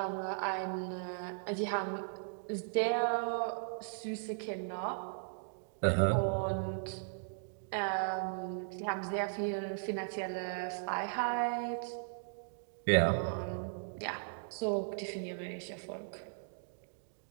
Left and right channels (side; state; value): left; silent; digital silence